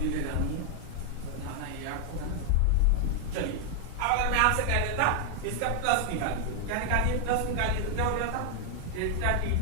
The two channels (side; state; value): both; different; correlation 0.00